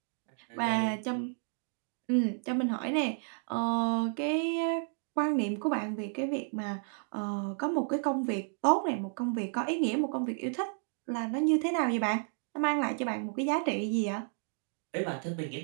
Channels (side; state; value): left; silent; 56 dB below the other